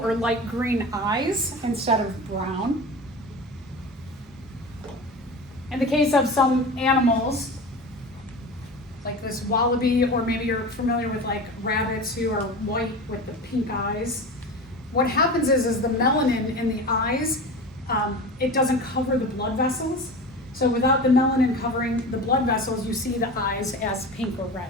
light green eyes instead of brown. In the case of some animals, like this wallaby, or maybe you're familiar with like rabbits who are white with the pink eyes, what happens is the melanin in the eyes, it doesn't cover the blood vessels. So without the melanin covering the blood vessels, you see the eyes as pink or red.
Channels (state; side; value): normal; both; correlation 0.31